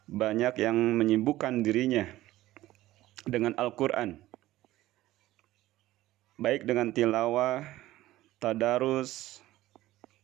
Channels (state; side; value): quieter; left; 16.0 dB